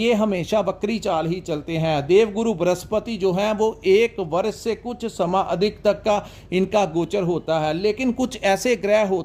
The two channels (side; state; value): both; identical; correlation 1.00